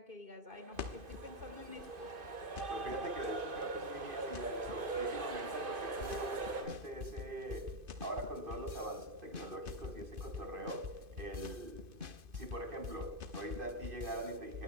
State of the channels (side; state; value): left; late; 2.5 ms